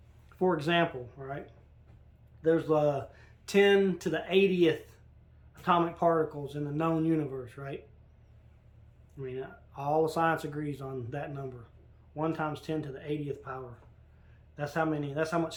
for example, right, there's 10 to the 80th atomic particles in the known universe, right? I mean, all the science agrees on that number. 1 times 10 to the 80th power. That's how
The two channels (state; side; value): identical; both; correlation 1.00